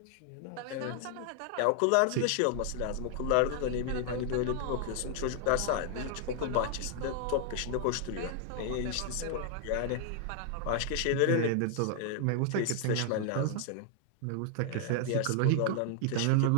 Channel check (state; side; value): different; both; correlation 0.00